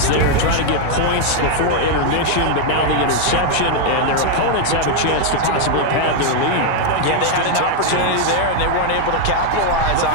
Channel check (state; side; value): different; both; correlation 0.00